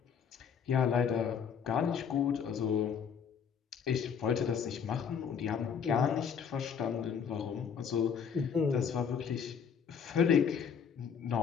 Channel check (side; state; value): right; quieter; 7.1 dB